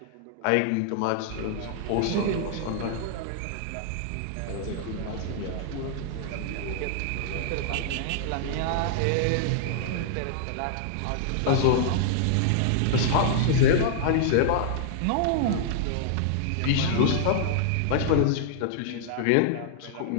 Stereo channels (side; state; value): both; different; correlation -0.01